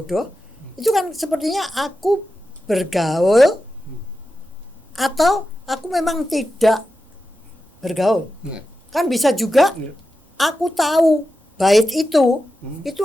Itu kan sepertinya aku bergaul atau aku memang tidak bergaul. Kan bisa juga aku tahu bait itu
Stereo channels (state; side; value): normal; both; correlation 0.91